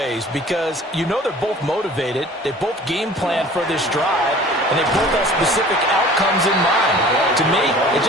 because you know they're both motivated. They both game plan for this drive, and they both have specific outcomes in mind. To me, it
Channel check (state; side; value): normal; both; correlation 0.46